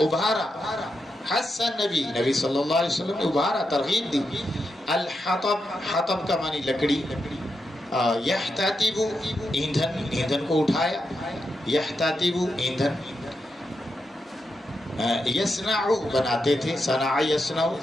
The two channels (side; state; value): both; normal; correlation 0.86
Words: حس نبی، نبی صلی اللہ علیہ وسلم نے ابھارا، ترغیب دی. الحطب، حطب کا معنی لکڑی. یحتطب، ایندھن، ایندھن کو اٹھایا. یحتطب، ایندھن. یصنع، بناتے تھے. صنع یصنع.